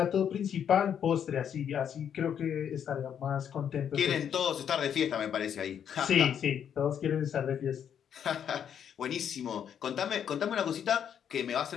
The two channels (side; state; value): right; quieter; 8.6 dB